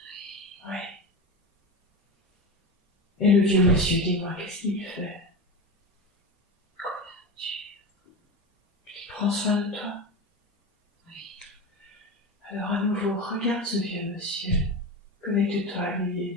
Oui. Et le vieux monsieur, dis-moi, qu'est-ce qu'il fait? Il prend soin de toi? Oui. Alors à nouveau, regarde ce vieux monsieur. Connecte-toi à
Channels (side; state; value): both; normal; correlation 0.23